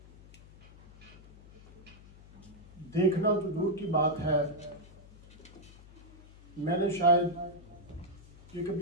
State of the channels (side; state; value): left; noise; hum, 21 dB below the sound